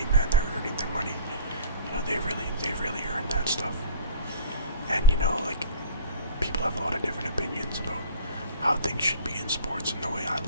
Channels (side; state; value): both; inverted; correlation -0.42